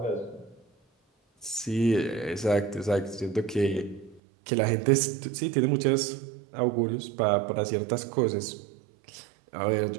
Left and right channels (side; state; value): left; drops out; at 4.2 s